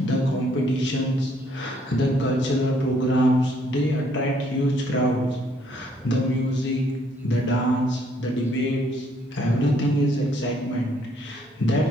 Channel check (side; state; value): both; normal; correlation 0.67